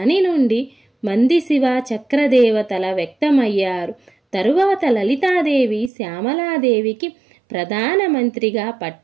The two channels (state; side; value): drops out; left; at 5.9 s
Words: నుండి మంది శివ చక్రదేవతల వ్యక్తమయ్యారు. తరువాత లలితాదేవి శ్యామలాదేవికి ప్రధానమంత్రిగా